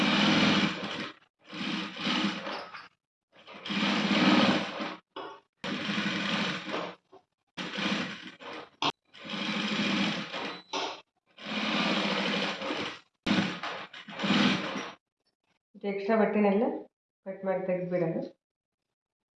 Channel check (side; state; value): both; identical; correlation 1.00